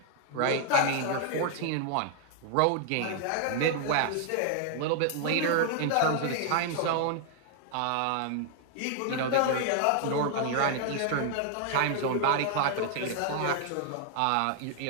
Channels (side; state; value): both; different; correlation 0.00